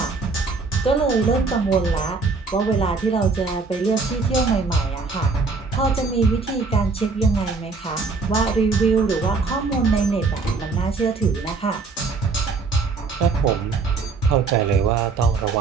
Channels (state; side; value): quieter; left; 4.3 dB